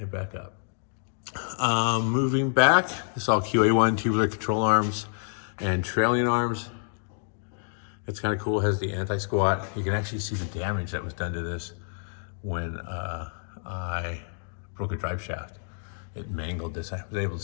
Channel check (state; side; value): silent; right; digital silence